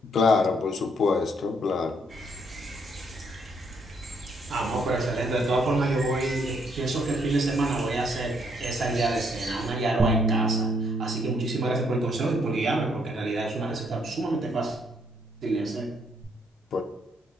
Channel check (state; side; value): normal; both; correlation 0.71